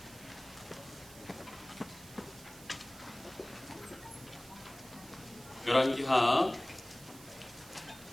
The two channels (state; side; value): noise; right; hiss, 18 dB below the sound